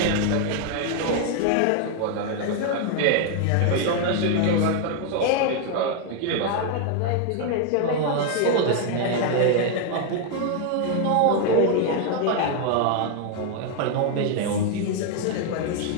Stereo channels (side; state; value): both; different; correlation 0.00